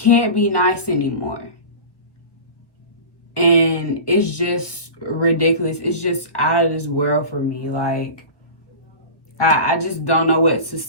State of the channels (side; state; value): right; late; 1.2 ms